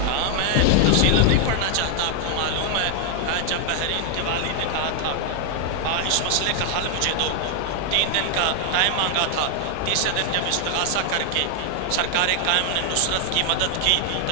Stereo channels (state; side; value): different; both; correlation 0.00